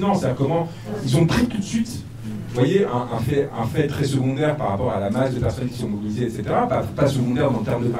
C'est-à-dire comment ils ont pris tout de suite, vous voyez, un fait très secondaire par rapport à la masse de personnes qui sont mobilisées, etc. Pas secondaire dans le terme de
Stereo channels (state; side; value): identical; both; correlation 1.00